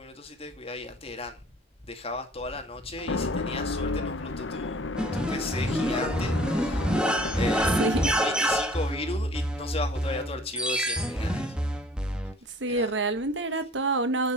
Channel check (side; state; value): both; normal; correlation 0.50